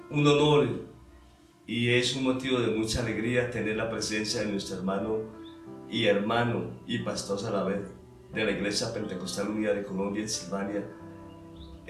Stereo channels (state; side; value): identical; both; correlation 1.00